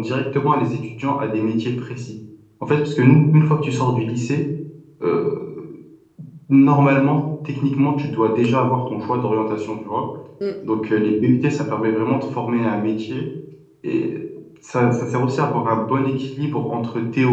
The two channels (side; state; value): both; identical; correlation 1.00